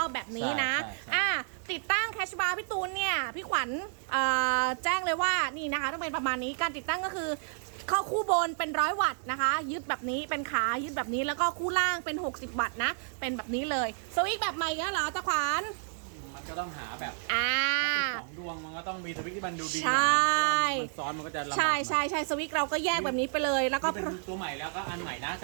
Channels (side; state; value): left; silent; 57 dB below the other